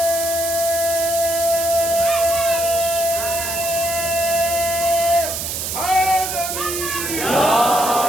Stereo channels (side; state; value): right; noise; hiss, 3 dB below the sound